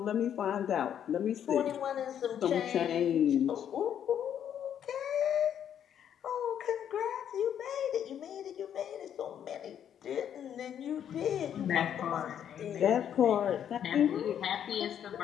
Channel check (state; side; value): quieter; right; 9.4 dB